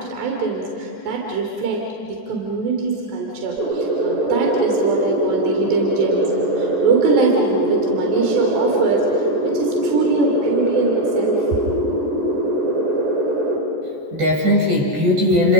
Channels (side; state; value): left; late; 14 ms